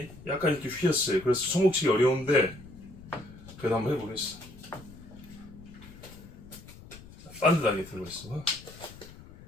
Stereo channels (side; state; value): left; noise; rumble, 18 dB below the sound